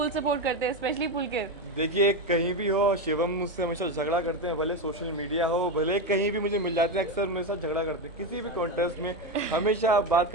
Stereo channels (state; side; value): normal; both; correlation 0.13